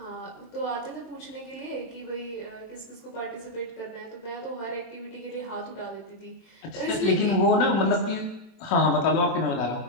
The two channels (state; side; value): late; right; 22 ms